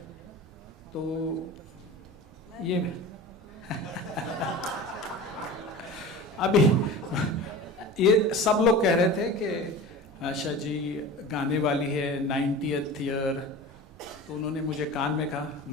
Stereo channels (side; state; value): both; normal; correlation 0.35